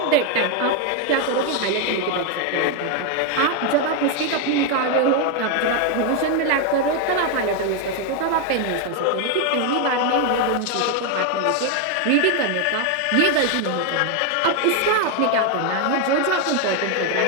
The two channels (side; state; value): both; different; correlation 0.01